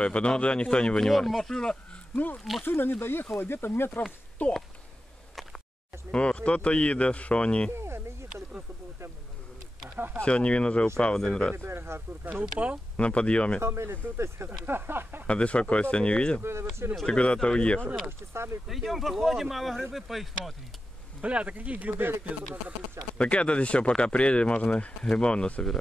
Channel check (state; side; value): normal; both; correlation 0.91